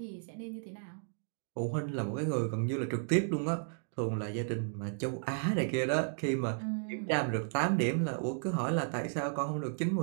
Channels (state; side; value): silent; left; digital silence